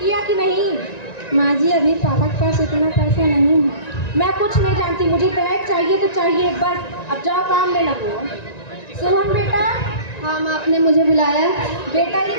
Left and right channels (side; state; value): right; late; 1.9 ms